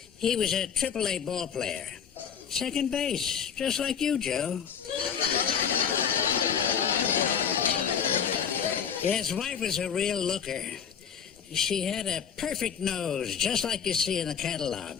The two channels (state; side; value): quieter; right; 7.5 dB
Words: He was a AAA ball player. Second base, just like you, Joe. Yeah, his wife was a real looker. She had a perfect nose, just like you see in the